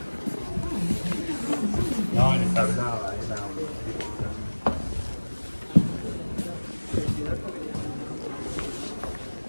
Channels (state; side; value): inverted; both; correlation -1.00